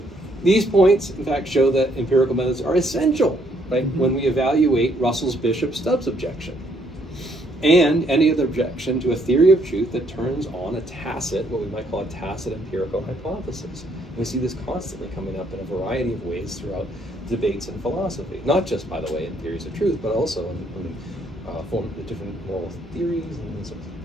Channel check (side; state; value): both; normal; correlation 0.69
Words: these points, in fact, show that empirical methods are essential, right, when we evaluate Russell's Bishop-Stubbs objection, and any other objection to a theory of truth that turns on a tacit, what we might call a tacit empirical hypothesis. And we see this constantly coming up in a variety of ways throughout debates in philosophy, not just, by the way, in theories of truth, but also in form of different moral theories and so on.